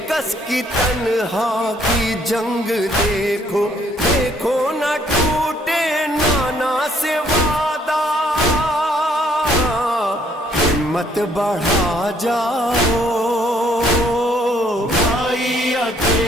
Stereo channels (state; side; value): normal; both; correlation 0.66